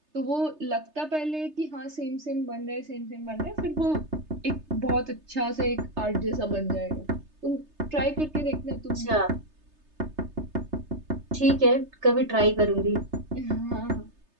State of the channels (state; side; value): late; left; 3.3 ms